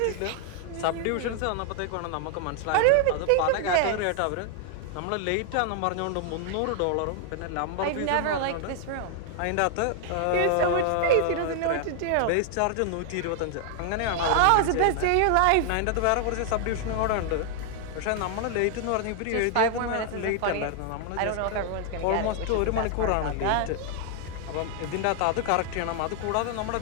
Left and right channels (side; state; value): both; different; correlation 0.00